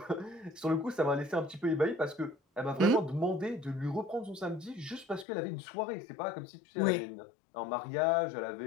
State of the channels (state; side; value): drops out; right; at 5.2 s